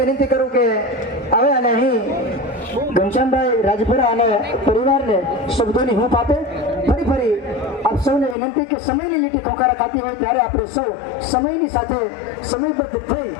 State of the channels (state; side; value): drops out; right; at 8.3 s